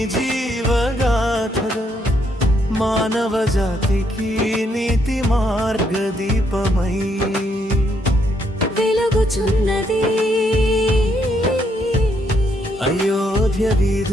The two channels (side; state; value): both; normal; correlation 0.74